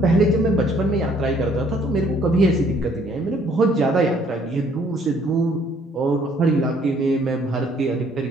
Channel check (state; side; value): normal; both; correlation 0.62